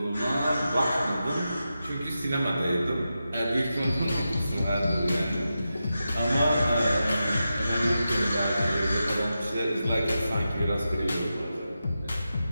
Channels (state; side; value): inverted; both; correlation -0.90